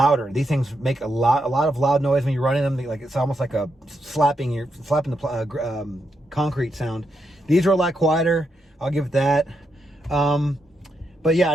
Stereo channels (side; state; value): both; normal; correlation 0.82